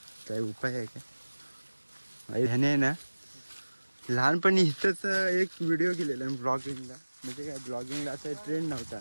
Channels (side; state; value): both; inverted; correlation -1.00